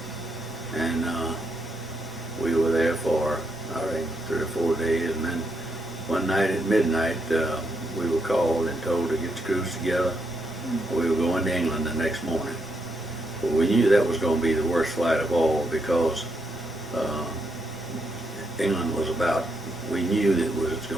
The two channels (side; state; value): both; normal; correlation 0.79